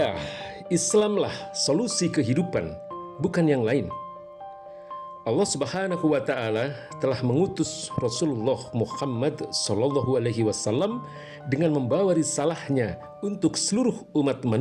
Islamlah solusi kehidupan, bukan yang lain. Allah Subhanahu wa Ta'ala telah mengutus Rasulullah Muhammad Sallallahu Alaihi Wasallam dengan membawa risalahnya untuk seluruh umat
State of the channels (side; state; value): both; identical; correlation 1.00